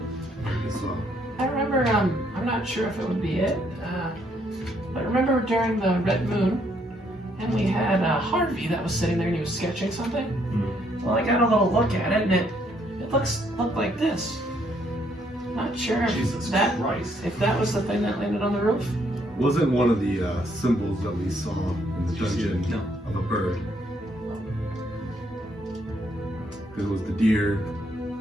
I remember. I'm not sure if it would be it. But remember during the red moon, and we had Harvey that was sitting there and he was sketching something. Well, I got a little look at it, and it looked like this. Not sure Jesus Christ. if that was the thing that landed on the roof. Wasn't one of the symbols that we saw in the dungeon of a bird? Because it was the deer,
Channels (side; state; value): both; normal; correlation 0.70